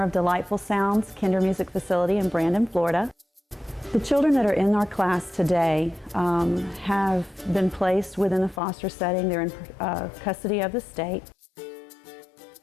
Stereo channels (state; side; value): drops out; right; at 8.6 s